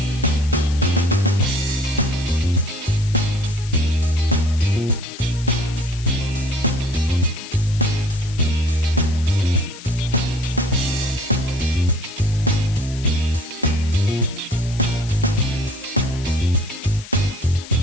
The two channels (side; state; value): left; noise; hiss, 16 dB below the sound